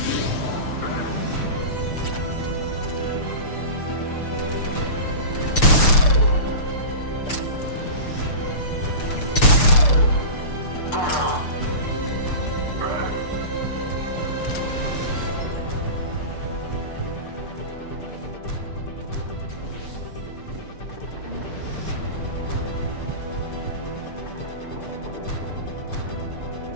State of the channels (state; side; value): late; right; 6.8 ms